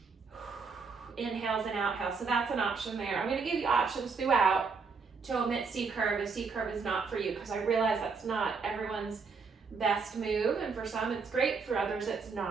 inhales and outhales. So that's an option there. I'm going to give you options throughout to omit C curve if C curve is not for you, because I realize that's not everyone's best move, and for some it's great, for others it's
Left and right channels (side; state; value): left; quieter; 4.9 dB